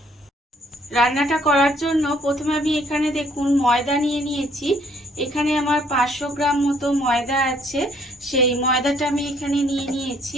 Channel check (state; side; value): normal; both; correlation 0.64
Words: রান্নাটা করার জন্য প্রথমে আমি এখানে দেখুন ময়দা নিয়ে নিয়েছি। এখানে আমার 500 গ্রাম মতো ময়দা আছে, সেই ময়দাটা আমি এখানে নিয়ে নিয়েছি।